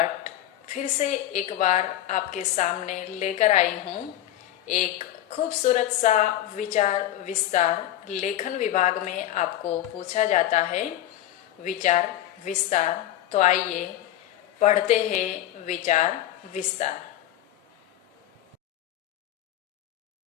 फिर से एक बार आपके सामने लेकर आई हूँ। एक खूबसूरत सा विचार विस्तार लेखन विभाग में आपको पूछा जाता है विचार विस्तार। तो आइए पढ़ते हैं विचार विस्तार।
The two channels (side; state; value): right; quieter; 13.0 dB